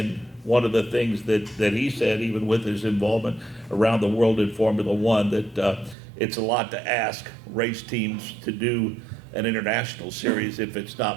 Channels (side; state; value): left; drops out; at 6.0 s